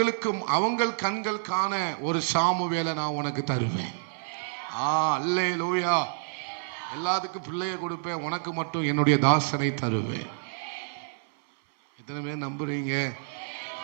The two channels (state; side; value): silent; left; 56 dB below the other